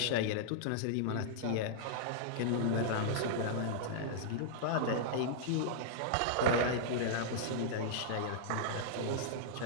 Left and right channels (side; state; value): both; different; correlation -0.02